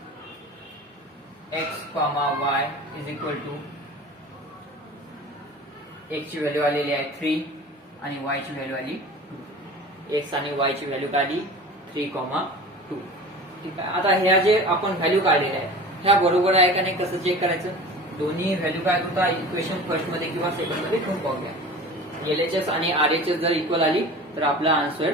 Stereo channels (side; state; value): both; normal; correlation 0.38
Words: x comma y is equal to x ची व्हॅल्यू आलेली आहे 3 आणि y ची व्हॅल्यू आली 2 x आणि y ची व्हॅल्यू काढली 3, 2 ठीक आहे आता ह्या जे आपण व्हॅल्यू काढलेल्या आहे ह्या बरोबर आहे का नाही कसं चेक करायचं दोन्ही व्हॅल्यू काय होता इक्वेशन फर्स्ट मध्ये किंवा सेकंड मध्ये ठेवून पाहूया LHS आणि RHS जर इक्वल आली तर आपला